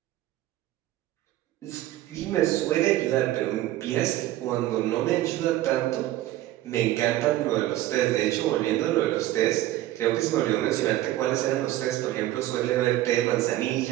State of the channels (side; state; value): left; quieter; 14.9 dB